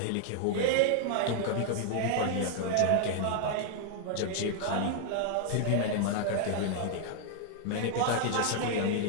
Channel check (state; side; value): different; both; correlation 0.00